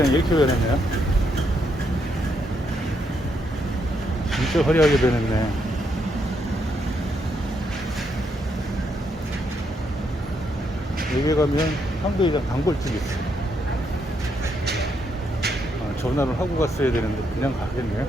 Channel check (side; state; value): both; normal; correlation 0.77